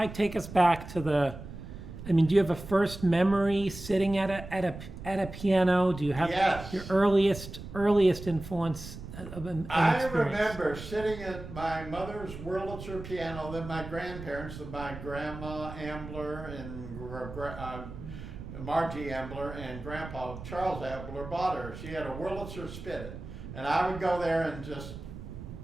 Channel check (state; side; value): noise; right; rumble, 11 dB below the sound